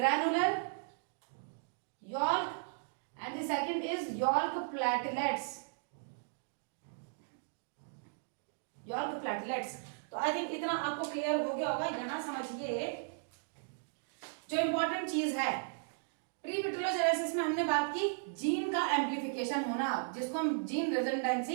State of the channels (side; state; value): left; silent; digital silence